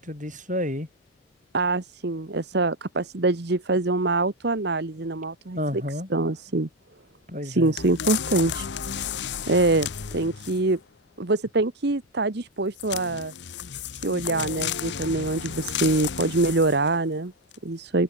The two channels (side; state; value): both; normal; correlation 0.08